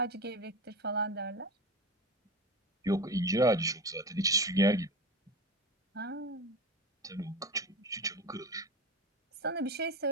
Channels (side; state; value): both; normal; correlation 0.26